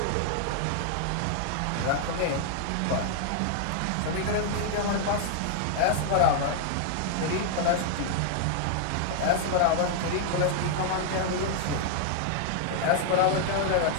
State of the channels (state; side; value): different; both; correlation 0.00